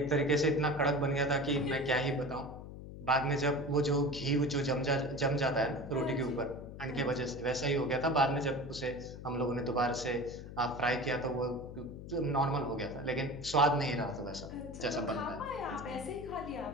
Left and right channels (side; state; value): left; noise; hum, 12 dB below the sound